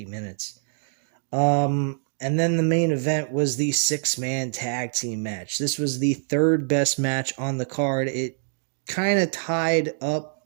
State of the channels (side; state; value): left; silent; digital silence